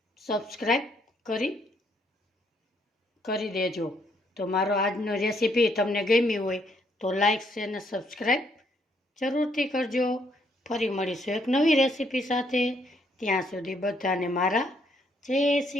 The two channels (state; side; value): normal; both; correlation 0.71